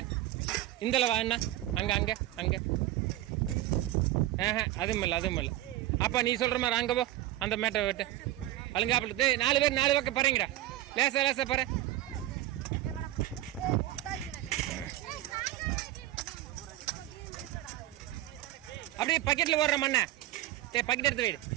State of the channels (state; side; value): quieter; left; 14.7 dB